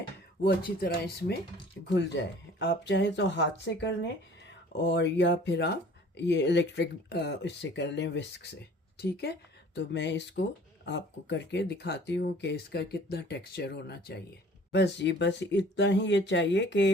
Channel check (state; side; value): normal; both; correlation 0.50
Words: वो अच्छी तरह इसमें घुल जाए। आप चाहे तो हाथ से कर लें और या फिर आप ये इलेक्ट्रिक इससे कर लें, विस्क से। ठीक है, तो मैं इसको आपको करके दिखाती हूँ कि इसका कितना टेक्सचर होना चाहिए। बस इतना ही ये चाहिए